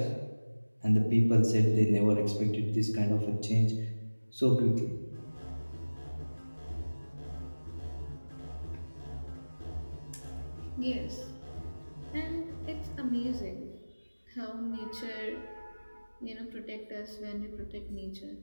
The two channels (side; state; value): both; inverted; correlation -1.00